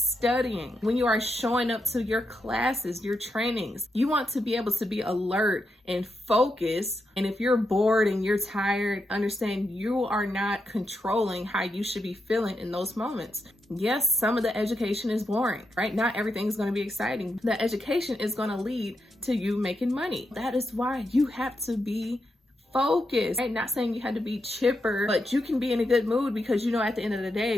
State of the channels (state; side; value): normal; both; correlation 0.84